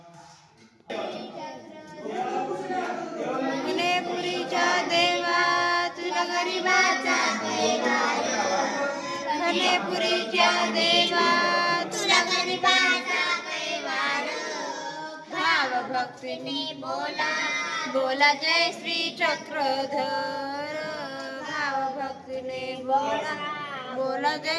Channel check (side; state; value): both; identical; correlation 1.00